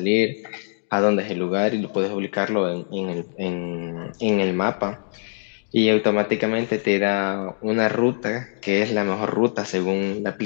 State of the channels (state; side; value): silent; right; digital silence